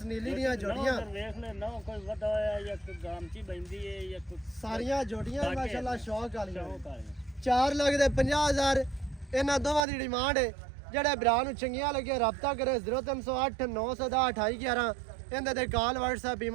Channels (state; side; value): drops out; left; at 9.9 s